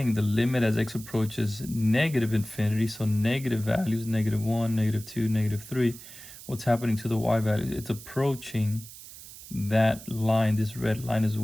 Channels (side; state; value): right; noise; hiss, 16 dB below the sound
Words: the limit as x approaches negative infinity, so negative values, negative 1, negative 2, negative 3, what's happening to the y value? It's approaching that line, this red line as